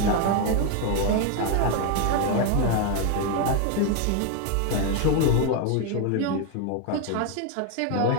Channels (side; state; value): both; different; correlation 0.01